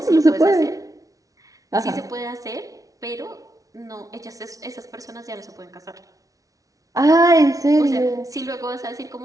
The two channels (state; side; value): late; left; 0.17 ms